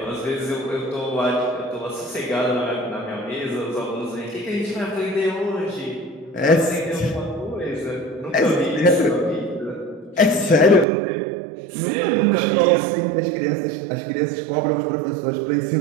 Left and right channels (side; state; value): left; drops out; at 10.9 s